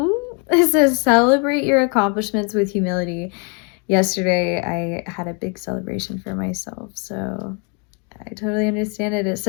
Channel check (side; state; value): right; quieter; 35.7 dB